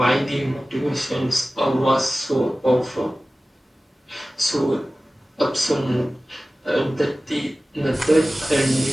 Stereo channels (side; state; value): both; normal; correlation 0.96